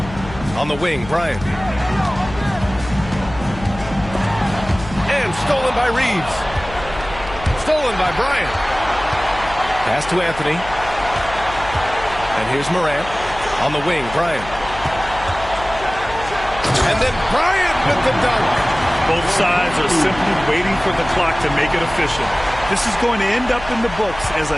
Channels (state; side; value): noise; left; hum, 13 dB below the sound